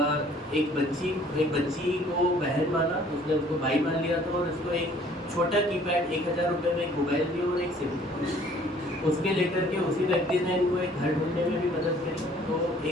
एक बच्ची को बहन माना, उसने उसको भाई मान लिया था और उसको एक छोटा कीपैड 1000 रुपये में एक मोबाइल दिया और एक सिम उसके लेकर के उसी व्यक्ति ने इनको एक घर ढूंढने में भी मदद करी। तो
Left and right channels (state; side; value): normal; both; correlation 0.56